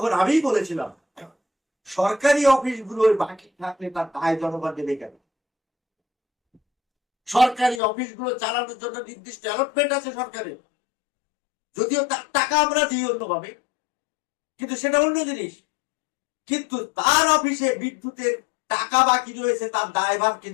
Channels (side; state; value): right; drops out; at 7.8 s